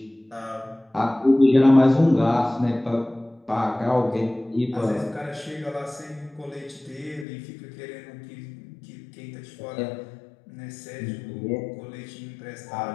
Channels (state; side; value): drops out; right; at 7.2 s